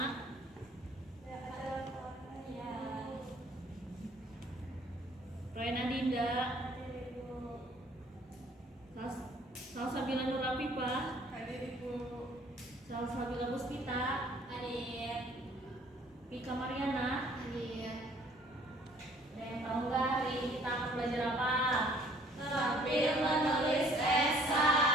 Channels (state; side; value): normal; both; correlation 0.57